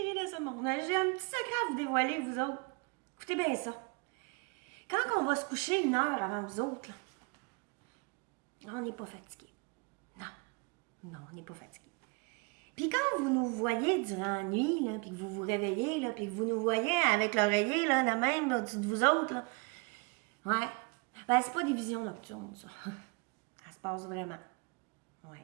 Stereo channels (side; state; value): left; quieter; 31.0 dB